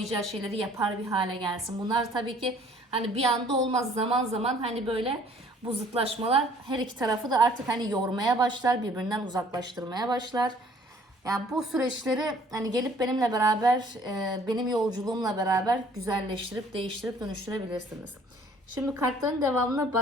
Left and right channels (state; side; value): normal; both; correlation 0.56